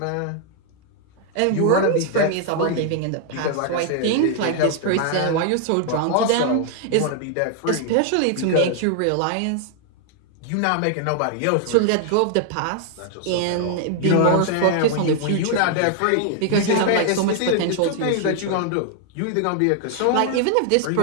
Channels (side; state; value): both; different; correlation 0.00